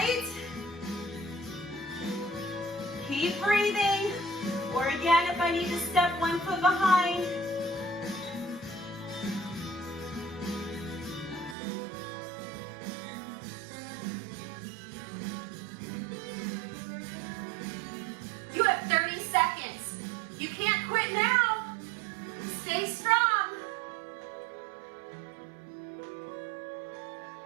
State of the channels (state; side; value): drops out; left; at 11.6 s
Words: Keep breathing. Or again, if I need to step 1 foot behind. You have 30 seconds. You can't quit now. Stay strong.